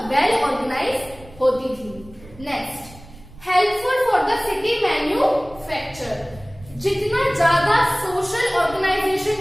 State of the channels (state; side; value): noise; right; rumble, 21 dB below the sound